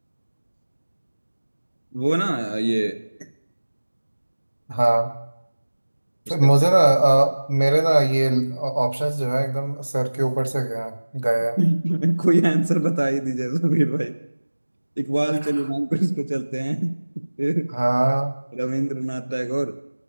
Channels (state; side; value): inverted; both; correlation -1.00